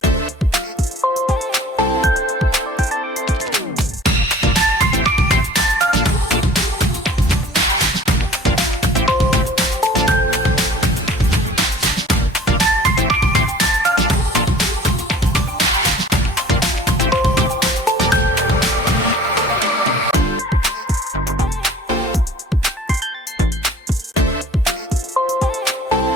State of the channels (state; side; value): normal; both; correlation 0.48